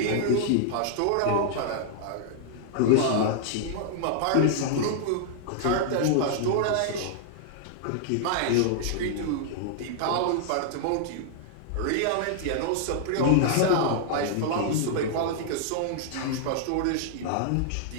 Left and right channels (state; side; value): different; both; correlation -0.01